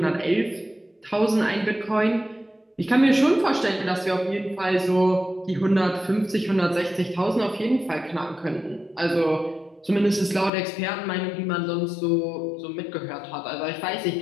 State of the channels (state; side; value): drops out; right; at 10.5 s